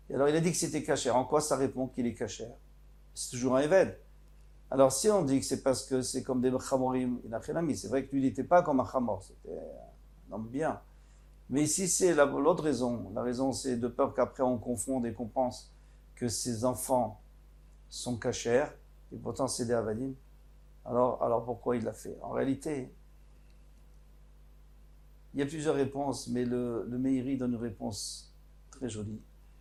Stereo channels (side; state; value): both; identical; correlation 1.00